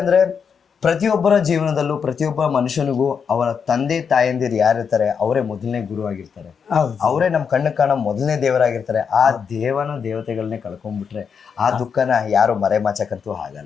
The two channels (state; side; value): quieter; right; 6.5 dB